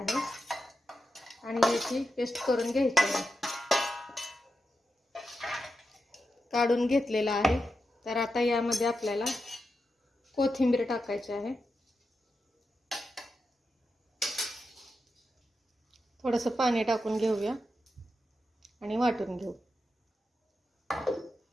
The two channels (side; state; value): both; normal; correlation 0.88